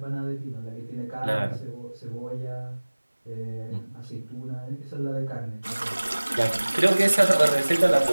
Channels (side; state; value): both; inverted; correlation -1.00